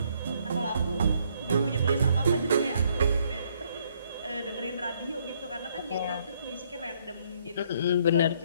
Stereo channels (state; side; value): inverted; both; correlation -0.69